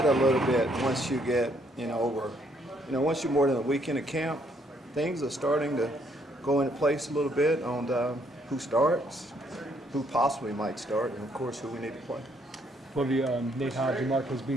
a little bit once you get, once you're more than a weekend of camp. Things are starting to go into place a little bit on who starts, who possibly might start, and of course who we need to play. Lovie, Nate Hobbs and Marquez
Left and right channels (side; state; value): both; normal; correlation 0.69